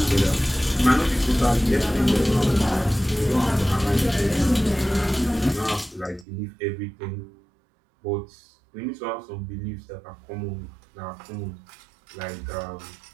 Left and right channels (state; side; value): drops out; left; at 6.2 s